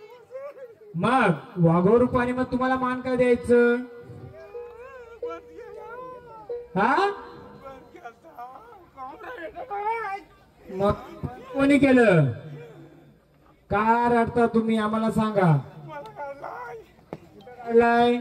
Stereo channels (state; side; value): identical; both; correlation 1.00